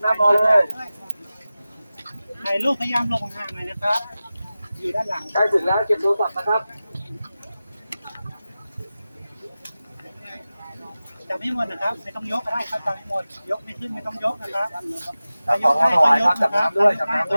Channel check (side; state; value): both; inverted; correlation -0.96